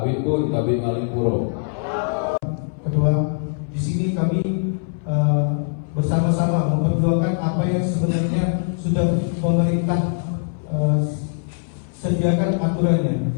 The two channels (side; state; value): right; silent; 61 dB below the other